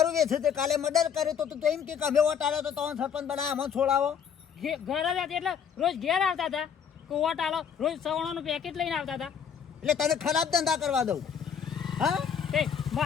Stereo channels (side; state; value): right; quieter; 7.4 dB